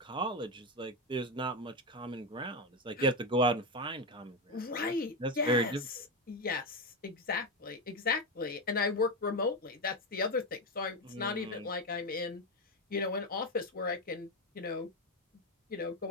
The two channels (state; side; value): normal; both; correlation 0.12